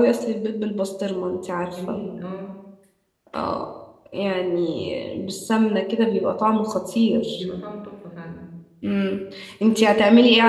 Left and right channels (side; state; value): both; identical; correlation 1.00